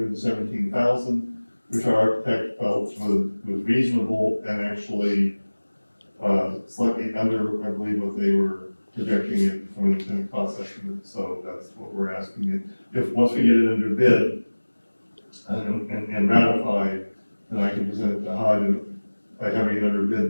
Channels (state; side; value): inverted; both; correlation -1.00